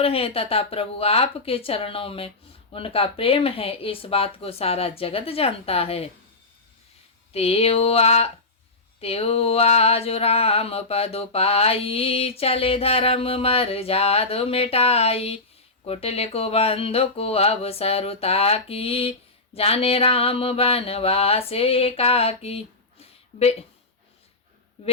हैं तथा प्रभु आपके चरणों में उनका प्रेम है, इस बात को सारा जगत जानता है। तेओ आज राम पद पाई चले धर्म मर जाद मिटाई कुटिल को बंधु को अवसरुता की जाने राम बनवास एकाकी।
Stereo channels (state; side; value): quieter; right; 3.2 dB